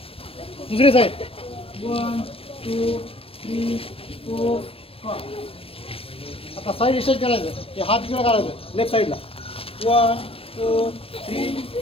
दुसरी साईड. 1, 2, 3, 4, 5. आता साईड स्ट्रेच करायचं. ते हात किंवा काढायचं लेफ्ट साईडला. 1, 2, 3,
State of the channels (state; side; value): late; right; 0.28 ms